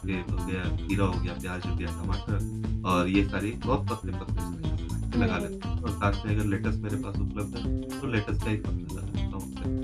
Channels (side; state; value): both; identical; correlation 1.00